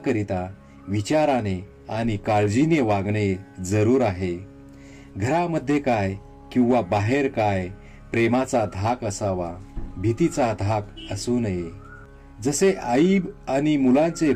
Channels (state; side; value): identical; both; correlation 1.00